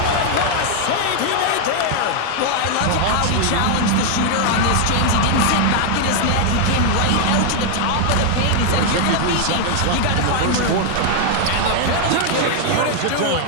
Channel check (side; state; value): both; different; correlation 0.00